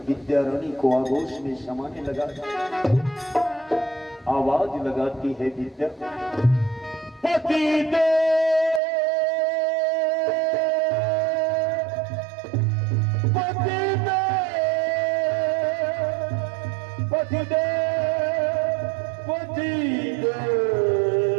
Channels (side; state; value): left; drops out; at 8.8 s